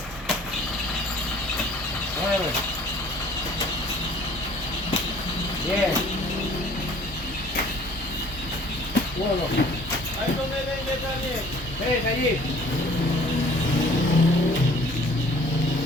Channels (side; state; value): both; normal; correlation 0.53